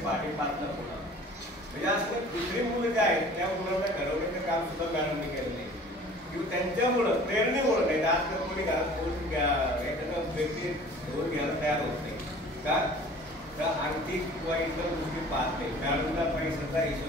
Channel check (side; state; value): both; normal; correlation 0.47